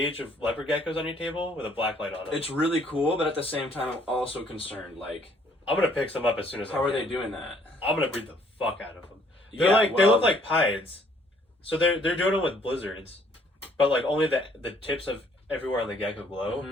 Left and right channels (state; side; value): normal; both; correlation 0.63